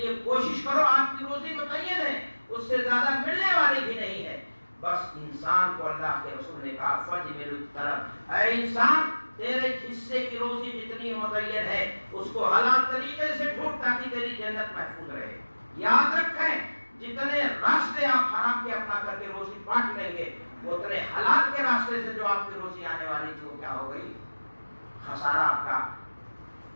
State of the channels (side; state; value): both; inverted; correlation -1.00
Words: کوشش کرو۔ آپ کی روزی متعین ہے، اس سے زیادہ ملنے والی بھی نہیں ہے۔ بس انسان کو اللہ کے رسول نے کہا فَجْمِلُ الطَّلَبَ، اے انسان تیرے حصے کی روزی جتنی متعین ہے اس کو حلال طریقے سے ڈھونڈ تاکہ تیری جنت محفوظ رہے۔ یاد رکھیں جتنے راستے آپ حرام کے اپنا کر کے روزی بانٹ لیں گے، اتنے حلال کے راستے سے جو آپ کی روزی آنے والی تھی وہ کیا ہو گئی؟ خسارہ آپ کا